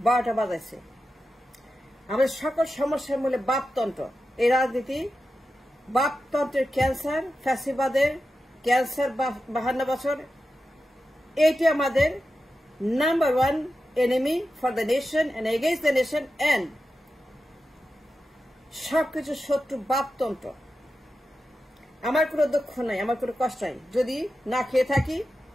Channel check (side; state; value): both; normal; correlation 0.91